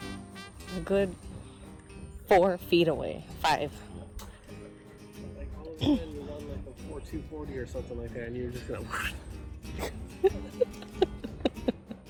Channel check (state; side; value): identical; both; correlation 1.00